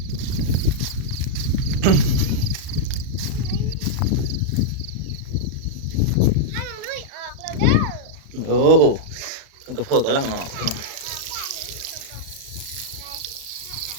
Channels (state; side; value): late; left; 36 ms